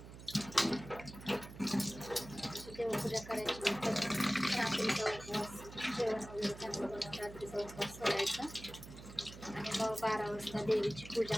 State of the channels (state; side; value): noise; right; hum, 14 dB below the sound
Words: देवपूजा करायची. रात्रीचा उपवास, जेवण वगैरे चांगलं बनवून रात्रीचा उपवास सोडायचा आणि मग 12 वाजता देवीची पूजा